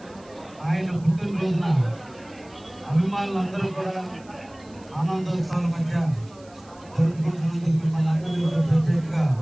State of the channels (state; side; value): noise; right; hiss, 27 dB below the sound